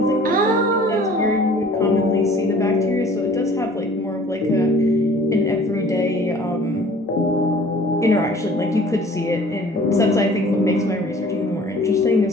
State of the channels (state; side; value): normal; both; correlation 0.50